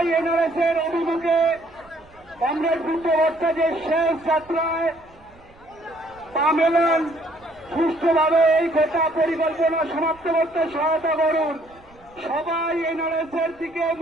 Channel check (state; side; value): noise; right; rumble, 28 dB below the sound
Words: এনআরএস এর অভিমুখে কমরেড বুদ্ধ ভট্টাচার্যের শেষ যাত্রায় পা মেলান। সুষ্ঠুভাবে এই গোটা পরিকল্পনা সমাপ্ত করতে সহায়তা করুন। সবাই এনআরএস এর দিকে